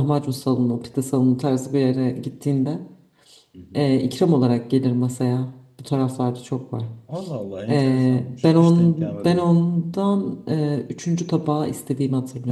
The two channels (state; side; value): identical; both; correlation 1.00